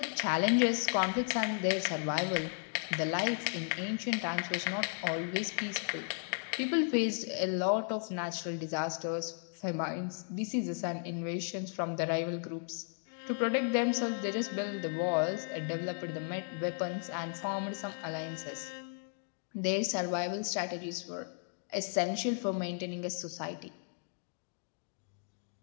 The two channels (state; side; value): silent; right; 54 dB below the other